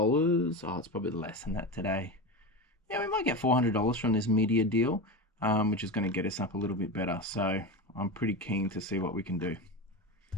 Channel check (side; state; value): both; normal; correlation 0.22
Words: Oh, it's probably less than that today. Yeah, we might get $400 from this media deal, which is going to get us up a little bit better. So I'm pretty keen to see what we can do.